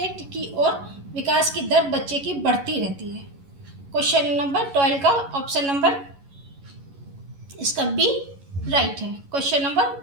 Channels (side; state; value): left; late; 11 ms